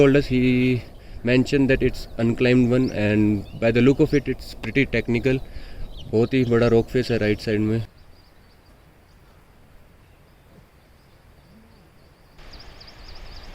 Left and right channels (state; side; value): identical; both; correlation 1.00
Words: us, he mentioned that it's unclimbed one, and by the look of it, it's pretty technical. बहुत ही बड़ा rock face है right side में.